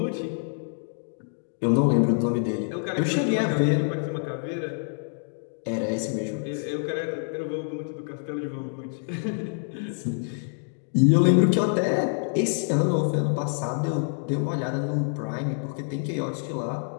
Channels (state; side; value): silent; right; 61 dB below the other